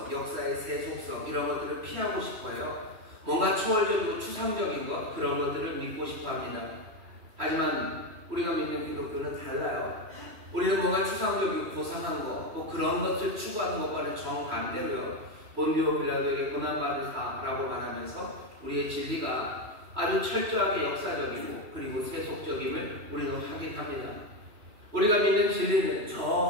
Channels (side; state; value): left; late; 3.0 ms